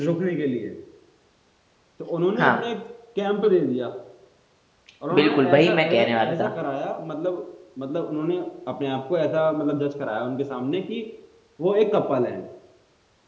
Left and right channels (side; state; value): both; identical; correlation 1.00